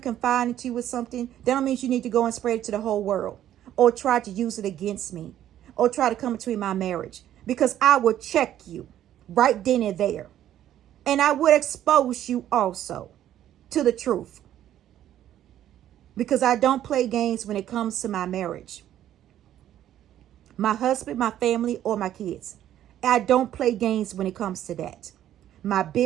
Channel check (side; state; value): left; quieter; 11.7 dB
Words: confide into you with something, that don't mean you need to go and spread it to the whole world, or try to use it against me, or try to come between my marriage. Because I will check you right then and there. And I would expose you also to the truth. Because I don't play games when it comes to my marriage. My husband, my family, or my kids. I don't play games when it comes to that. My